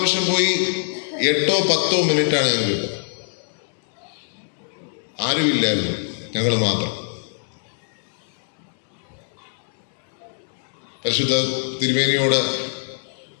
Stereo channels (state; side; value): silent; right; 63 dB below the other